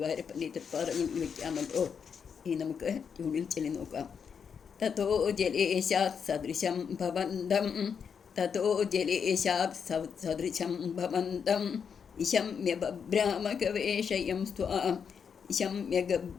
തൃപ്പാദങ്ങളിൽ വയ്ക്കാമല്ലോ. ഇനി നമുക്ക് ട്യൂണിൽ ചൊല്ലി നോക്കാം. തതോ ജലേശാത് സദൃശം ഭവന്തം തതോ ജലേശാത് സദൃശം ഭവന്തം ഇശമ്യ ബഭ്രാമഗവേഷയം സ്വാം ഇശമ്യ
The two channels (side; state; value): right; quieter; 6.7 dB